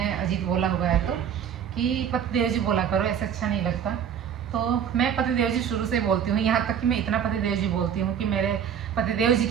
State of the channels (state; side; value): quieter; left; 8.4 dB